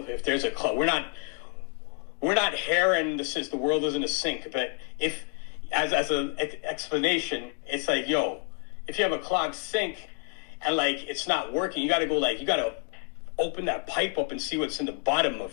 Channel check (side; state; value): right; quieter; 36.6 dB